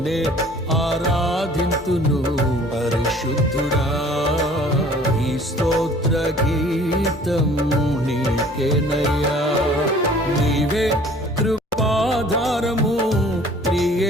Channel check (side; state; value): both; normal; correlation 0.52